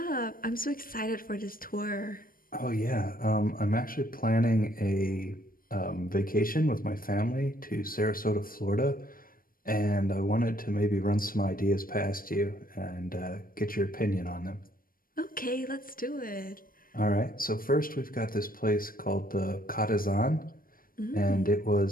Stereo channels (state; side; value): late; right; 0.41 ms